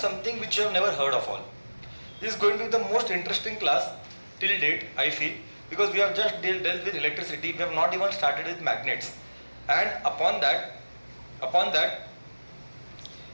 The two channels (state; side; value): inverted; both; correlation -1.00